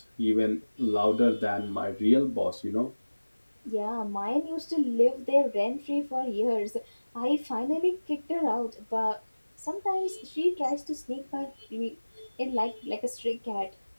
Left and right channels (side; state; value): both; inverted; correlation -1.00